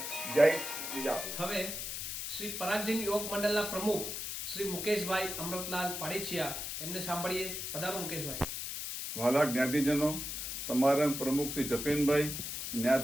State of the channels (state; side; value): noise; left; hiss, 5 dB below the sound